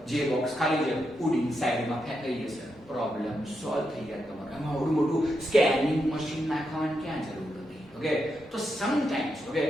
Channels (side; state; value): both; normal; correlation 0.84